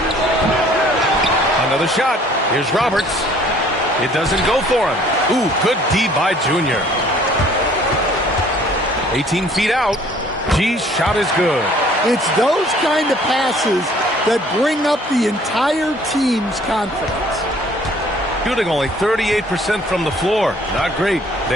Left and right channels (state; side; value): normal; both; correlation 0.56